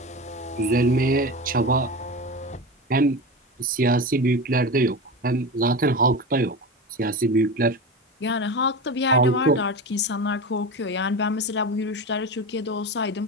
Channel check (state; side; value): normal; both; correlation 0.25